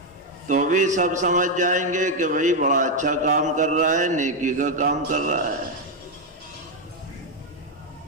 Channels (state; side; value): normal; both; correlation 0.03